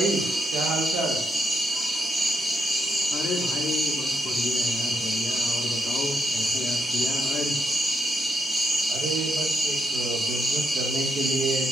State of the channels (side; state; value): both; normal; correlation 0.78